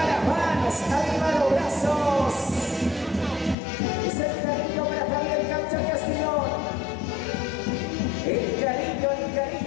las manos, arriba los brazos. Es el cariño para Javier Cancha Castellón. El cariño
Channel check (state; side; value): drops out; right; at 3.6 s